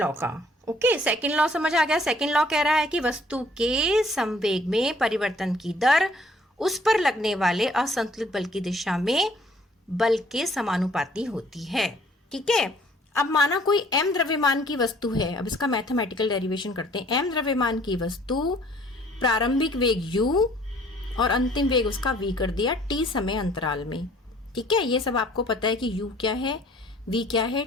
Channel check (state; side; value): normal; both; correlation 0.58